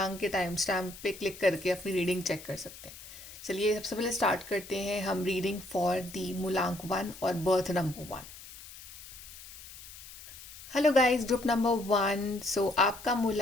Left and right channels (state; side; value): noise; left; hiss, 16 dB below the sound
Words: के टाइम स्टैम्प पे क्लिक करके अपनी रीडिंग चेक कर सकते हैं। चलिए सबसे पहले स्टार्ट करते हैं हम रीडिंग फॉर दी मूलांक 1 और birth number 1। Hello guys, group number 1। आपका